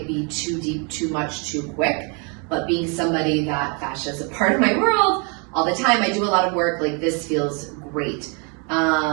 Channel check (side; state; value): left; quieter; 34.9 dB